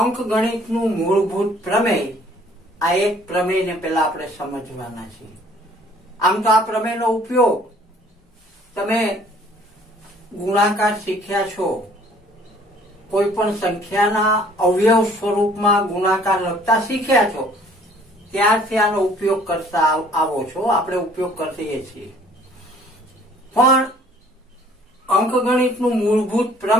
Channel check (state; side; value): normal; both; correlation 0.57